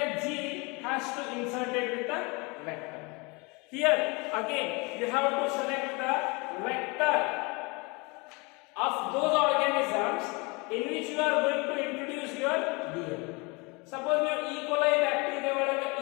gene has to insert it with the vector. Here again you have to select the vector of those organisms in which you are going to introduce your DNA. Suppose you E. coli bacteria ಒಳಗೆ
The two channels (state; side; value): quieter; right; 28.1 dB